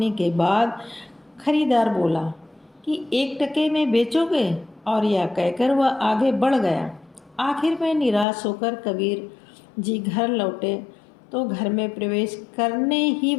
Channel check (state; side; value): drops out; right; at 8.2 s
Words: के बाद खरीदार बोला कि 1 टके में बेचोगे, और यह कहकर वह आगे बढ़ गया। आखिर में निराश होकर कबीर जी घर लौटे तो घर में प्रवेश करने ही